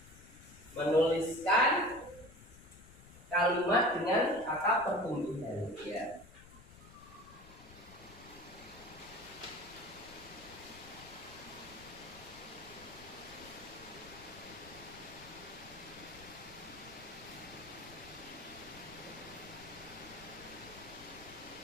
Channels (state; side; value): noise; left; rumble, 19 dB below the sound